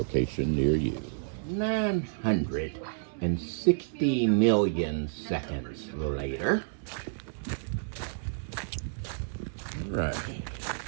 near you. 960 million seconds later. Right.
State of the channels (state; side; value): silent; left; digital silence